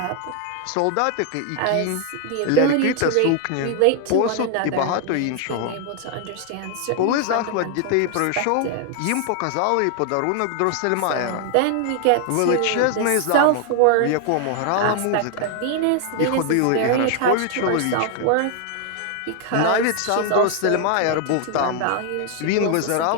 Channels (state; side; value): different; both; correlation 0.00